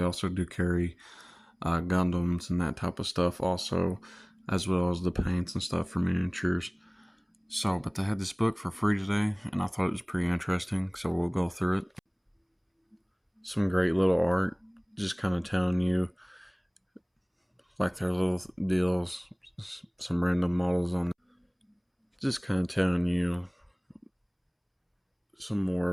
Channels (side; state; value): both; identical; correlation 1.00